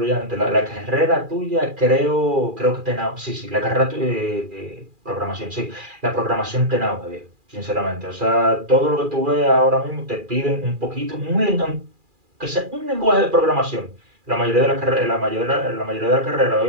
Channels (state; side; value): late; left; 2.4 ms